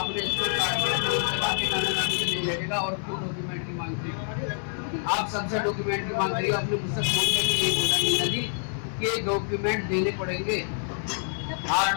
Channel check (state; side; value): silent; right; 57 dB below the other